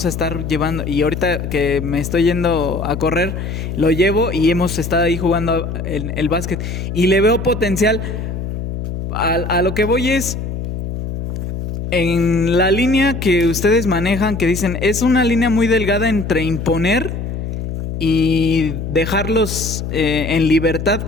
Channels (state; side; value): noise; left; hum, 5 dB below the sound